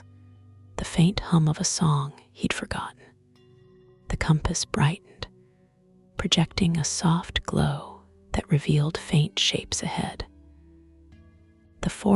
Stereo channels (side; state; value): both; identical; correlation 1.00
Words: the faint hum of a song he'd forgotten. The compass brightened, projecting a soft glow that revealed faint shapes ahead. The